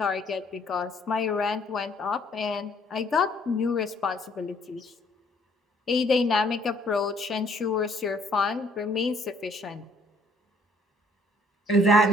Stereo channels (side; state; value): both; normal; correlation 0.63